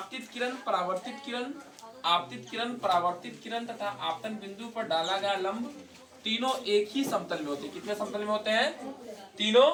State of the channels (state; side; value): identical; both; correlation 1.00